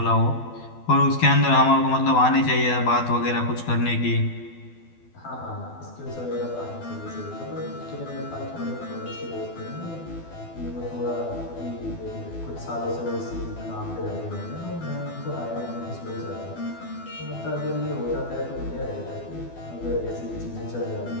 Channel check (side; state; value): right; late; 12 ms